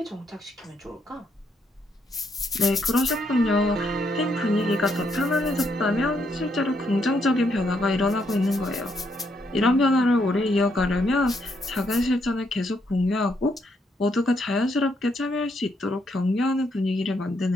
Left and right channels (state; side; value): normal; both; correlation 0.75